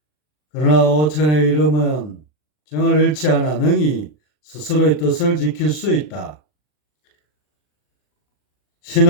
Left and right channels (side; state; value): right; late; 40 ms